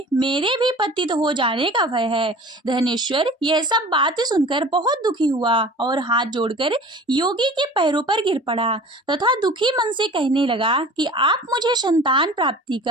मेरे भी पतित हो जाने का भय है। धनेश्वर यह सब बात सुनकर बहुत दुखी हुआ और हाथ जोड़कर योगी के पैरों पर गिर पड़ा तथा दुखी मन से कहने लगा कि आप मुझे संतान प्राप्ति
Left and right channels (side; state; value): both; normal; correlation 0.42